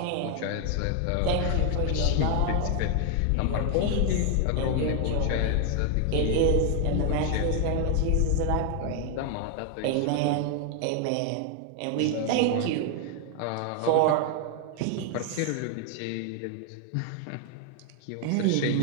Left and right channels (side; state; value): both; different; correlation 0.00